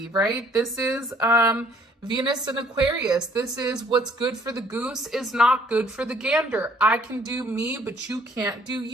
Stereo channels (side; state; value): both; normal; correlation 0.60